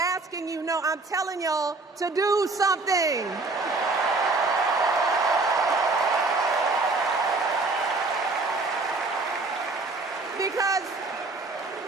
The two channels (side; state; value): left; quieter; 3.5 dB